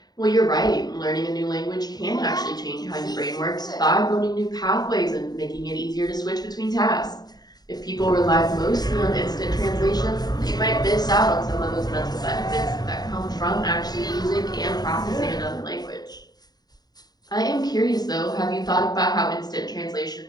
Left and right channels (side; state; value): right; late; 0.19 ms